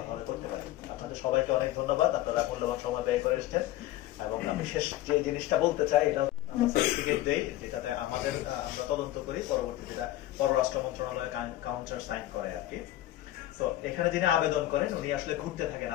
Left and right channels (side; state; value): right; quieter; 14.8 dB